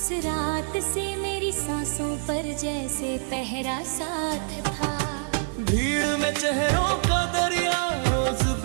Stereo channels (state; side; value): silent; left; 60 dB below the other